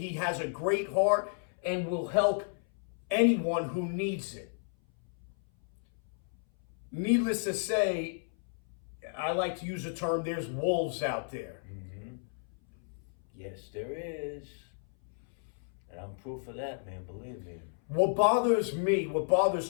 has a great heart and will help anyone who needs it. Needless to say, I like to use the term, there's wolves out there. Mm-hmm. Yes, there is. And I'm proof of that, man, believe me. What bothers me, what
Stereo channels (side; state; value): right; silent; 56 dB below the other